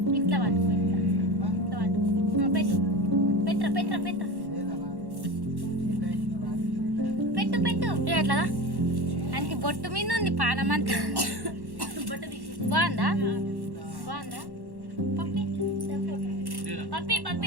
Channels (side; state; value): left; late; 1.1 ms